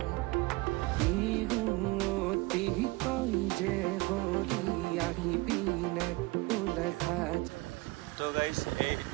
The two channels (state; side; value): quieter; left; 22.6 dB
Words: তো গাইজ এই